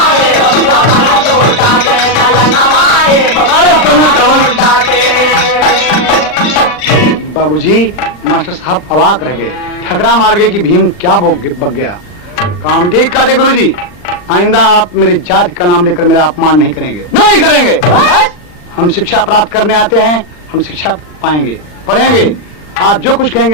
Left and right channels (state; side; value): late; right; 40 ms